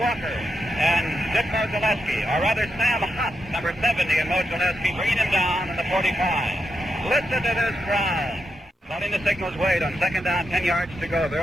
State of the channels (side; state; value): both; normal; correlation 0.85